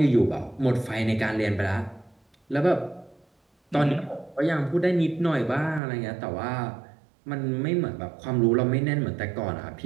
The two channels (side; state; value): left; drops out; at 5.8 s